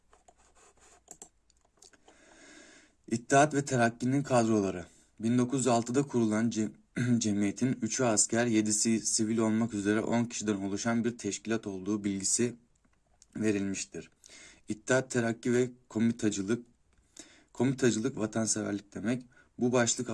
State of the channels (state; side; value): identical; both; correlation 1.00